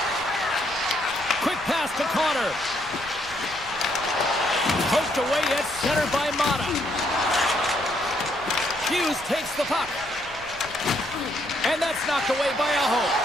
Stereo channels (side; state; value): left; noise; rumble, 21 dB below the sound